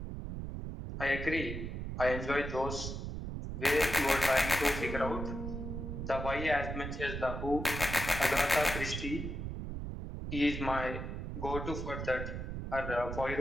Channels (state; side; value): noise; right; rumble, 5 dB below the sound